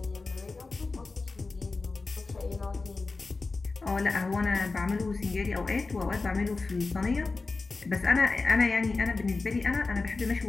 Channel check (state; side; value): quieter; right; 3.8 dB